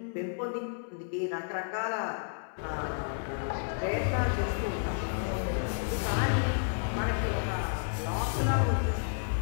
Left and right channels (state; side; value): silent; right; digital silence